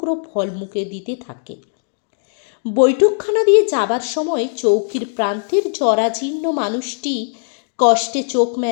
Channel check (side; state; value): right; silent; 65 dB below the other